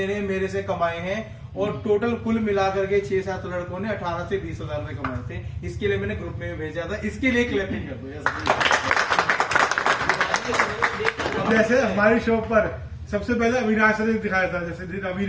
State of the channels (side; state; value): both; identical; correlation 1.00